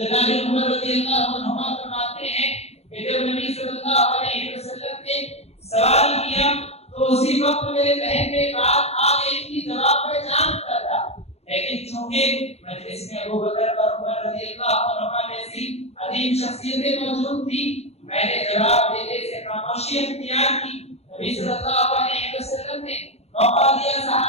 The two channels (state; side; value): late; right; 0.31 ms